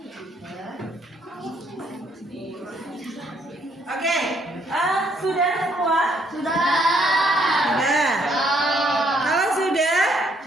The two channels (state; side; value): normal; both; correlation 0.69